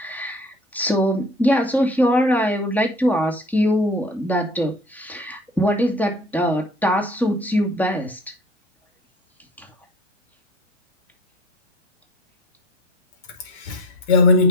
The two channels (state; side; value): normal; both; correlation 0.43